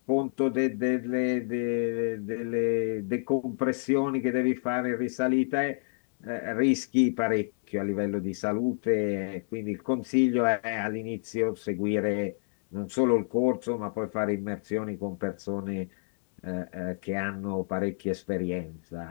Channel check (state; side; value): silent; right; 58 dB below the other